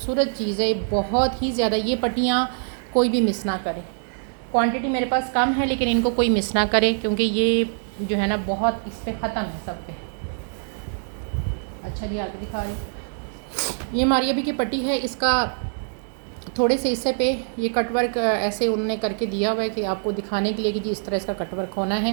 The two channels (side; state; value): left; silent; digital silence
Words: चीज़ है, बहुत ही ज़्यादा। ये पट्टियाँ कोई भी मिस ना करे। क्वांटिटी मेरे पास कम है लेकिन इनको कोई मिस ना करे, क्योंकि ये जो है ना बहुत इस पर ख़त्म है सब पे। अच्छा जी, आगे दिखा रही। ये मारिया बी की पट्टी है। इसका थोड़े से हिस्से पे ये कटवर्क ऐसे उन्होंने करके दिया हुआ है कि आपको दिखाने के लिए कि जी इस तरह इसका कटवर्क होना